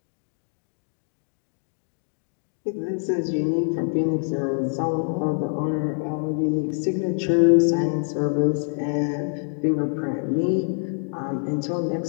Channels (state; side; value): silent; right; 59 dB below the other